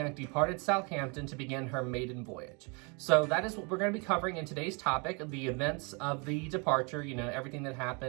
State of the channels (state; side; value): quieter; left; 32.3 dB